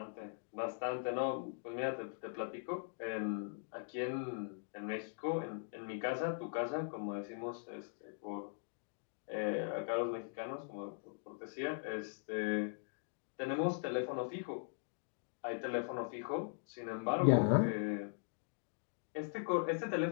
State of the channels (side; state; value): right; silent; digital silence